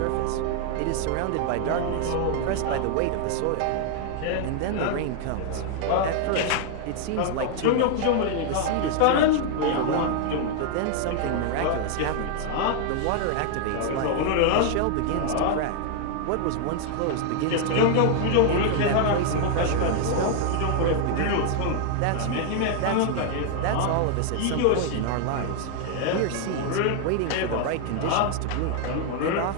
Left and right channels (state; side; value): different; both; correlation 0.00